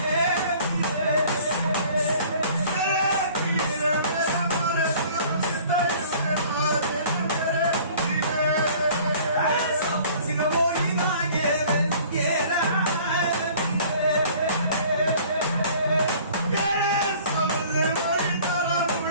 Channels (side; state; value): both; inverted; correlation -0.50